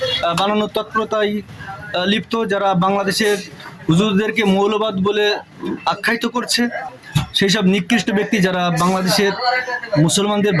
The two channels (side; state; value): both; identical; correlation 1.00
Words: বানানোর তৎপরতায় লিপ্ত, যারা বাংলাদেশের হুজুরদেরকে মৌলবাদ বলে আখ্যায়িত করছে, সেই সব নিকৃষ্ট ব্যক্তি যারা বাংলাদেশের মুসলমানদের